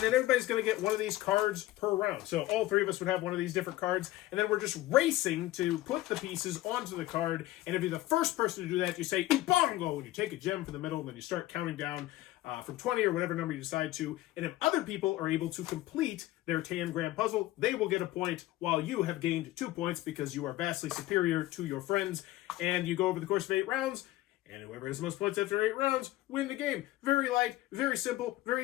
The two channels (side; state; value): right; quieter; 16.5 dB